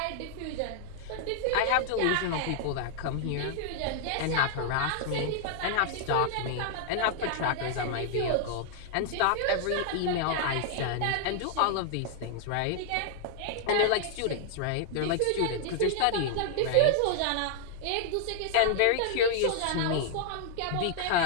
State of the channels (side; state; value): both; different; correlation 0.00